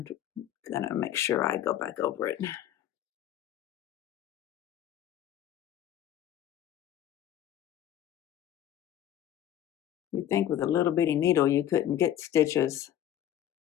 make sure I go back over it. You'd think with a little bitty needle you couldn't get stitches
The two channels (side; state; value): right; quieter; 11.5 dB